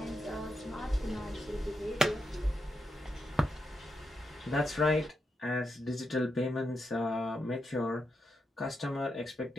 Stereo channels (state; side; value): normal; both; correlation 0.85